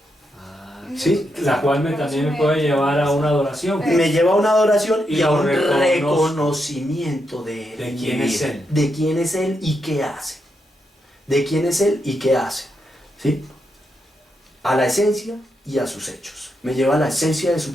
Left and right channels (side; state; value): both; normal; correlation 0.83